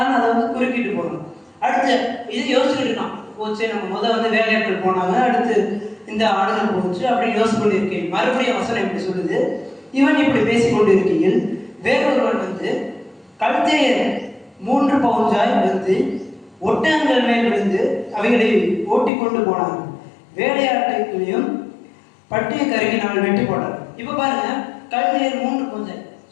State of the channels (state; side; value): drops out; right; at 19.1 s